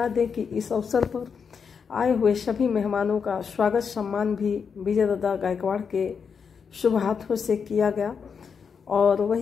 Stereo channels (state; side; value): quieter; right; 6.2 dB